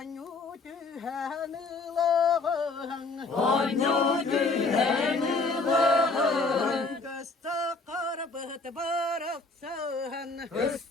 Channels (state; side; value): quieter; right; 3.7 dB